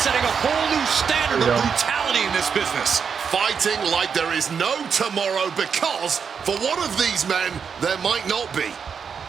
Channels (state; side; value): quieter; left; 6.5 dB